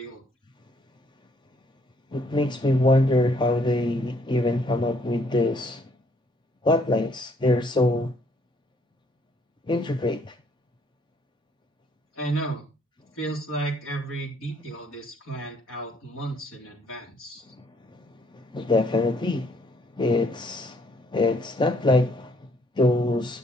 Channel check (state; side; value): normal; both; correlation 0.66